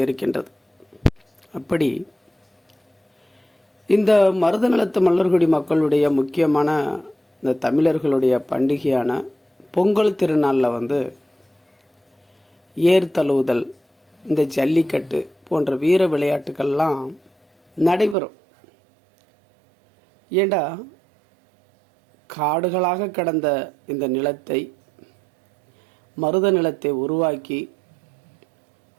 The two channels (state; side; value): drops out; left; at 18.2 s